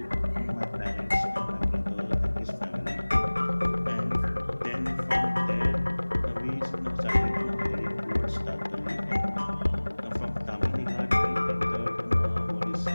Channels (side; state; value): both; inverted; correlation -1.00